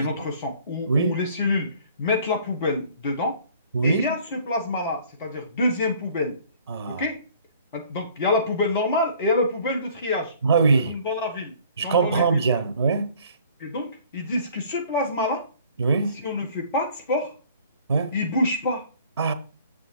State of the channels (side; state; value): both; inverted; correlation -0.54